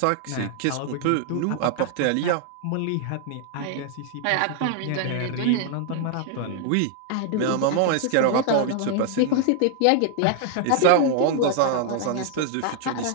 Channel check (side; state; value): both; different; correlation 0.00